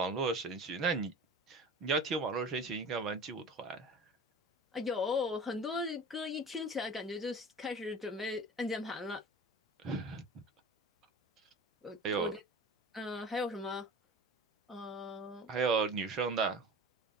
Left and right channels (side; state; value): both; normal; correlation 0.37